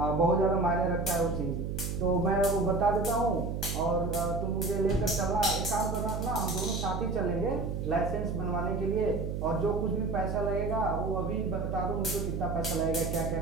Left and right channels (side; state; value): right; noise; hum, 3 dB below the sound